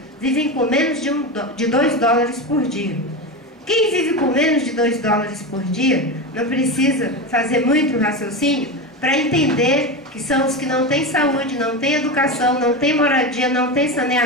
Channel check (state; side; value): normal; both; correlation 0.20